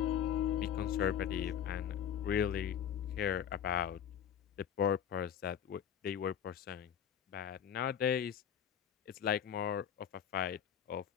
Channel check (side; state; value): right; quieter; 8.9 dB